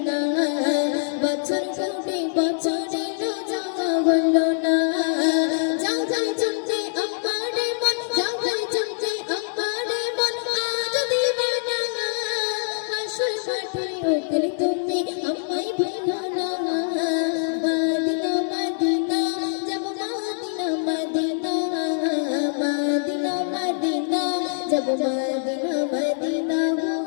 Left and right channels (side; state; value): right; silent; digital silence